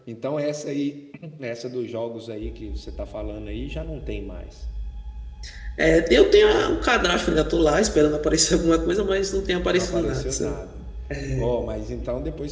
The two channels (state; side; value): identical; both; correlation 1.00